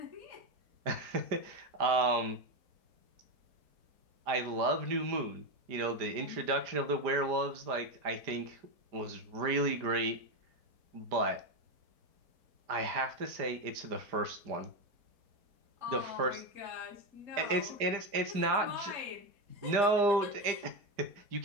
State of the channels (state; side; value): late; left; 4.9 ms